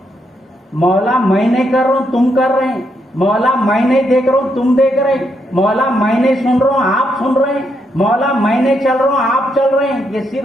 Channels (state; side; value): normal; both; correlation 0.78